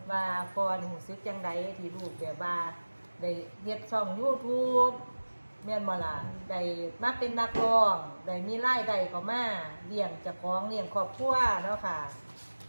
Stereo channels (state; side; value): inverted; both; correlation -1.00